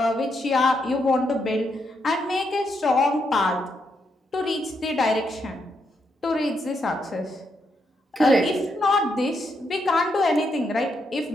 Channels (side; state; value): both; normal; correlation 0.79